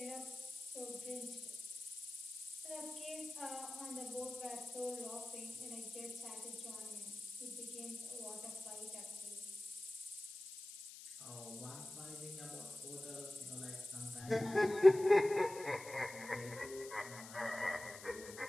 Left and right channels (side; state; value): left; noise; hiss, 13 dB below the sound